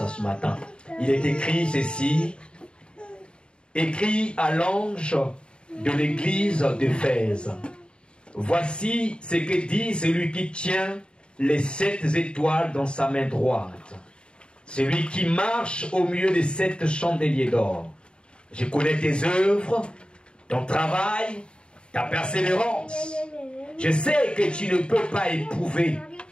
ce matin. Il est écrit ceci: écrit à l'ange de l'église d'Éphèse. Voici ce que dit celui qui tient les 7 étoiles dans sa main droite, celui qui marche au milieu des 7 chandeliers d'or. Je connais tes œuvres, ton travail, ta persévérance. Je sais que tu ne peux pas éprouver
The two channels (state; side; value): late; right; 0.052 ms